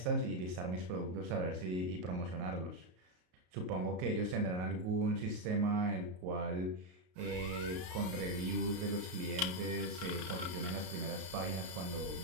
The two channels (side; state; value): left; late; 33 ms